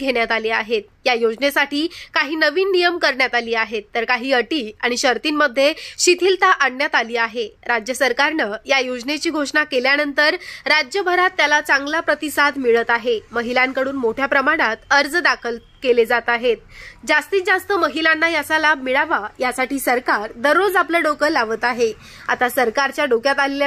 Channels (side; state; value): both; identical; correlation 1.00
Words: आले आहेत। या योजनेसाठी काही नवीन नियम करण्यात आले आहेत, तर काही अटी आणि शर्तींमध्ये शिथिलता आणण्यात आली आहे। राज्य सरकारनं या योजनेची घोषणा केल्यानंतर राज्यभरात त्याला चांगला प्रतिसाद मिळत आहे। महिलांकडून मोठ्या प्रमाणात अर्ज दाखल केले जात आहेत। जास्तीत जास्त महिलांना याचा लाभ मिळावा यासाठी सरकार दररोज आपलं डोकं लावत आहे। आता सरकारच्या डोक्यात